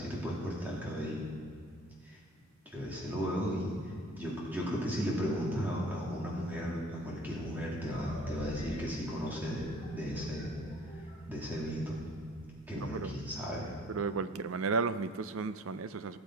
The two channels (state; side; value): normal; both; correlation 0.51